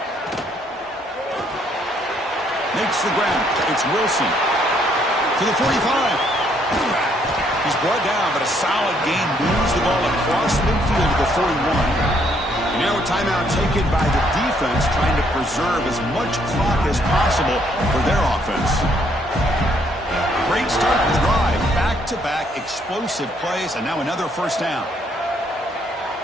Makes the grab. It's Wilson to the 45. He's brought down, but a solid gain moves the ball across midfield to the 41. And now a timeout taken by the defense, trying to preserve as much clock as possible for their offense. Great start to the drive. Back-to-back explosive plays, and now another 1st down.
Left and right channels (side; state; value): both; normal; correlation 0.69